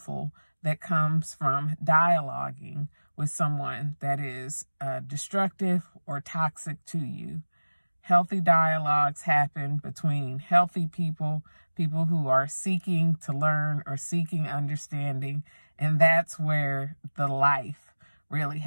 that comes from dialoguing with someone that is destructive or toxic to you. Healthy dialogues happen between healthy people, people who are seeking to learn or seeking understanding, and that's where the life really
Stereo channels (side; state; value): both; inverted; correlation -1.00